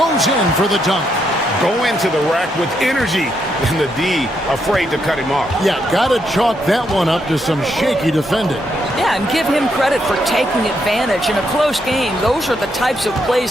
in for the dunk. Go into the rack with energy, and the D afraid to cut him off. Yeah, gotta chalk that one up to some shaky defending. Yeah, and give him credit for taking advantage. In a close game, those are the types of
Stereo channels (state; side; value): normal; both; correlation 0.78